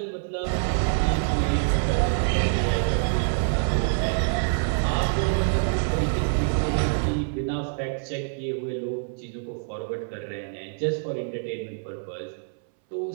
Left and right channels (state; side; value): silent; left; 61 dB below the other